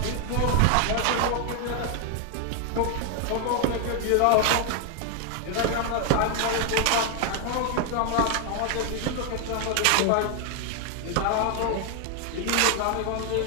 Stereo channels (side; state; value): both; different; correlation 0.00